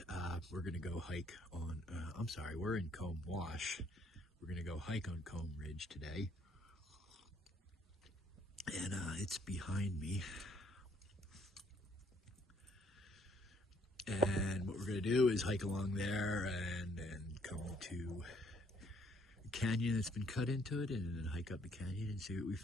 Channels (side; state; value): both; normal; correlation 0.66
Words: We're gonna go hike on, we're in Comb Wash. We're gonna go hike on Comb Ridge today. And it's behind me. And what we're gonna do is hike along there and then come to canyon that's been cut into it, and then hike up the canyon and see what we